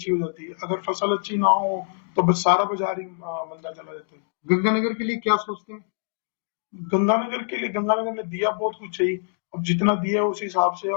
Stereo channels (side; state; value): right; silent; digital silence